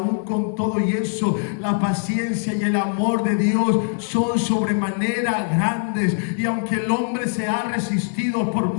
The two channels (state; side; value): silent; right; 64 dB below the other